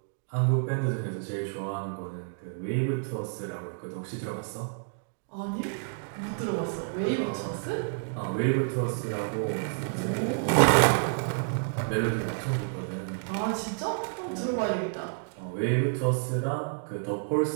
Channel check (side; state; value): left; silent; digital silence